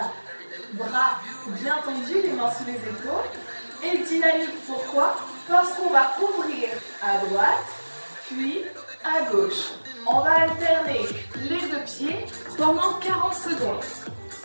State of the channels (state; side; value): inverted; both; correlation -1.00